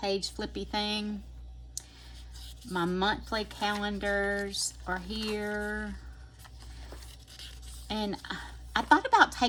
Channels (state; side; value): identical; both; correlation 1.00